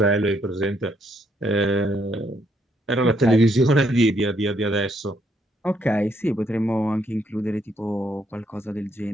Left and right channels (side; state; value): both; normal; correlation 0.72